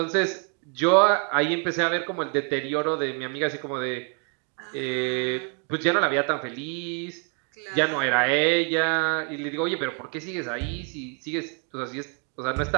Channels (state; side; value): quieter; left; 37.9 dB